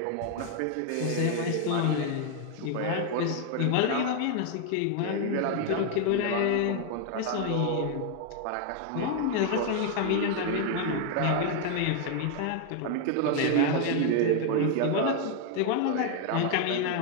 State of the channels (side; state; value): both; different; correlation 0.01